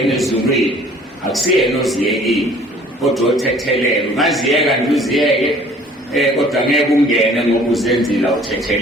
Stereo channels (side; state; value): both; normal; correlation 0.53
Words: ezulwini, akusiyena oziyekile, kodwa othethelela. Ungaziyeka nje uziyeke, kodwa ngeke ungene ngoba uzenzile